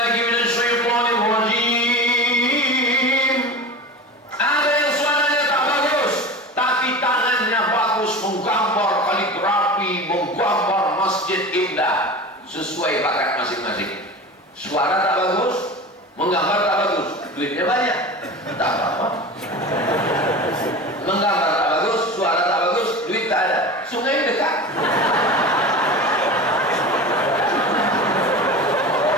minasyaitonir rajim. Ada yang suaranya tak bagus, tapi tangannya bagus menggambar kaligrafi, menggambar masjid indah. Sesuai bakat masing-masing. Suara tak bagus, menggambar tak bagus, duitnya banyak, tak apa-apa. Menggambar tak bagus, suara tak bagus, duit tak ada, sungai dekat.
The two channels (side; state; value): both; normal; correlation 0.31